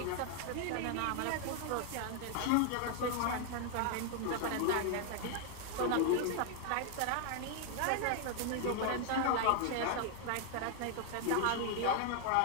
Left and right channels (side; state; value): both; different; correlation 0.00